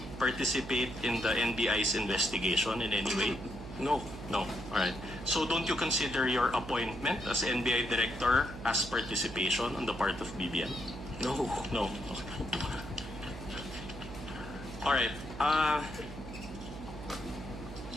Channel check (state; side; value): noise; right; hum, 11 dB below the sound